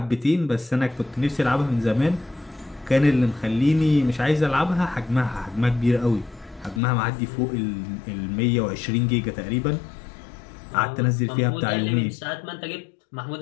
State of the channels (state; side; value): drops out; right; at 6.8 s